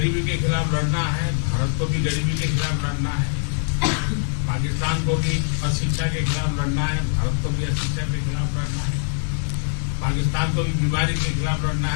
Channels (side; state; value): right; silent; digital silence